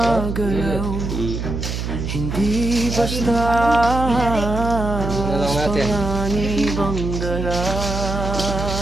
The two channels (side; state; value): right; noise; hum, 4 dB below the sound